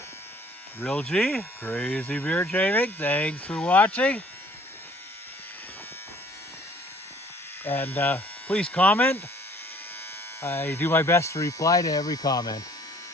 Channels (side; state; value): both; normal; correlation 0.56